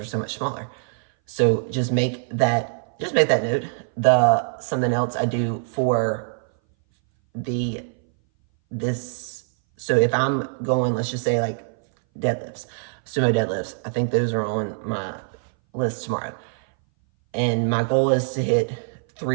so much smaller. So just make that note. Something else I do for so if I'm going, let's just say like deadlifts, sumo deadlifts, I think those are on my list tomorrow. And my goal is to hit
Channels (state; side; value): silent; left; 60 dB below the other